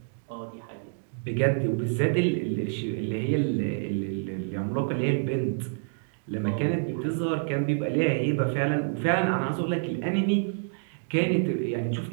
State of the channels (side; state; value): left; silent; digital silence